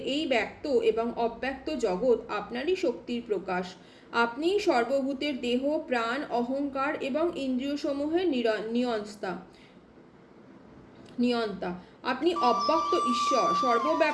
এই ব্যক্ত এবং অব্যক্ত জগৎ আপনারই শক্তির প্রকাশ। আপনি সর্বভূতের দেহ, প্রাণ, অহংকার এবং ইন্দ্রিয়সমূহের নিয়ন্তা। আপনি অব্যক্ত ঈশ্বর,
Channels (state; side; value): identical; both; correlation 1.00